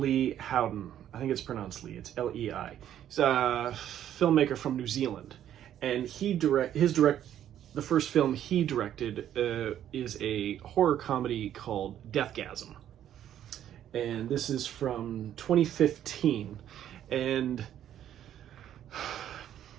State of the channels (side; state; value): left; quieter; 10.9 dB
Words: Howden. I think it's pronounced Lee. It's L-E-I. He's a filmmaker from New Zealand, and the first film he directed is a horror comedy called Deathgasm, and this is from 2015. And